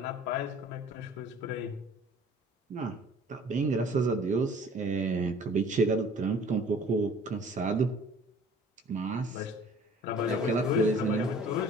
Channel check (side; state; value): both; normal; correlation 0.50